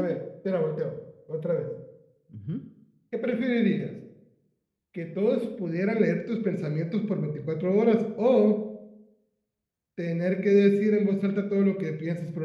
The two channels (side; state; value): both; identical; correlation 1.00